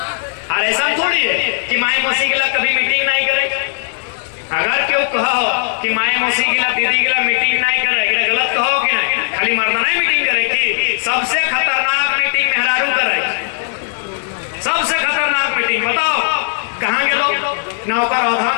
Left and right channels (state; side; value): silent; right; digital silence